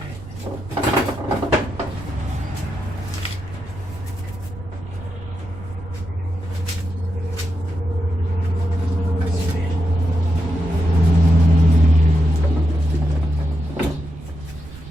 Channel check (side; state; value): right; noise; rumble, 15 dB below the sound